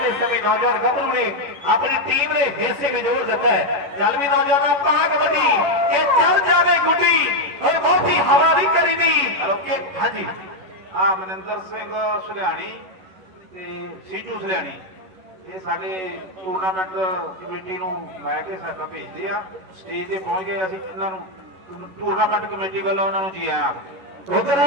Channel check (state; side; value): late; left; 11 ms